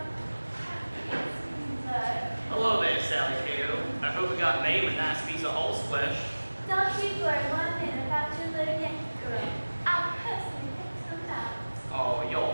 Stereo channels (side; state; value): both; inverted; correlation -1.00